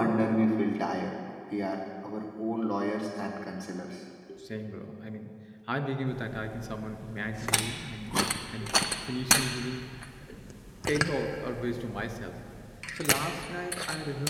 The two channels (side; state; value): both; identical; correlation 1.00